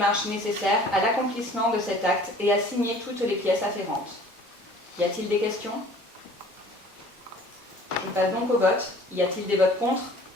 nécessaires à l'accomplissement de cet acte et à signer toutes les pièces afférentes. Y a-t-il des questions? Je passe donc au vote. Y a-t-il des votes contre?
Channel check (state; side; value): normal; both; correlation 0.49